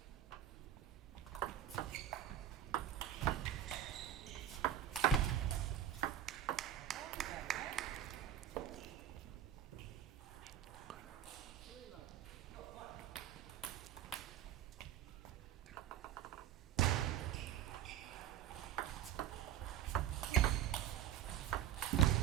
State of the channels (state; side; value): quieter; left; 10.6 dB